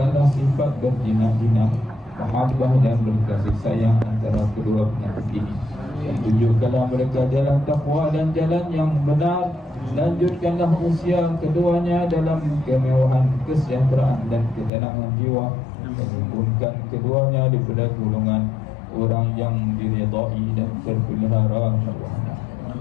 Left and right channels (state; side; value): drops out; right; at 14.7 s